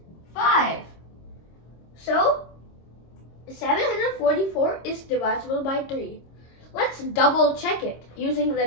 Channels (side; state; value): right; late; 26 ms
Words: 5. So 744 is divisible by 3. Let's double check it using